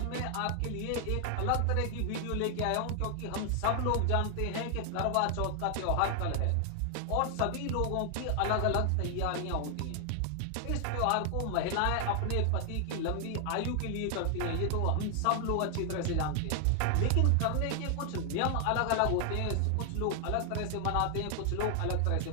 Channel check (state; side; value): different; both; correlation 0.00